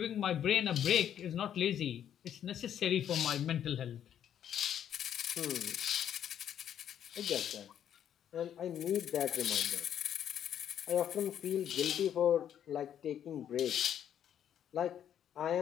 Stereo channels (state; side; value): quieter; right; 9.8 dB